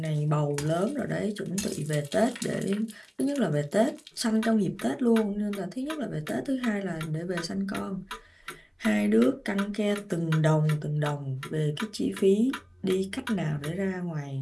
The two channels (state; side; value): identical; both; correlation 1.00